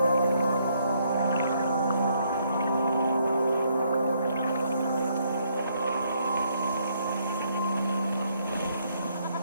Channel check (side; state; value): both; inverted; correlation -0.71